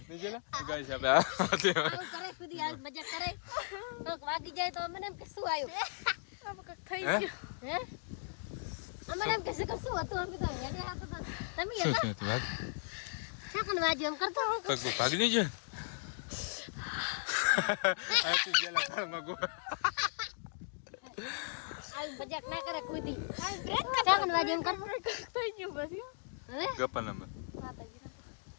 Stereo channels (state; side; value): silent; right; digital silence